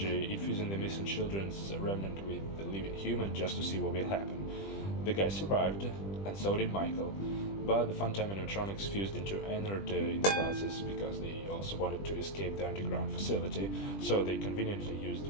infusing the missing children's remnant with the living human just to see what will happen. The guy survived, and so did Michael, but the Funtime animatronics fused into Ennard in the process because they also wanted to escape the underground facility, so they conveniently used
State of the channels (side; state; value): right; late; 20 ms